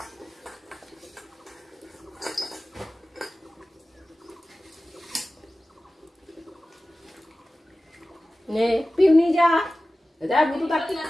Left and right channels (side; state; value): both; normal; correlation 0.96